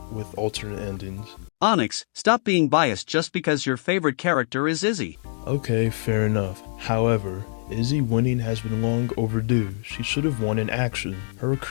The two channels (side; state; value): right; silent; digital silence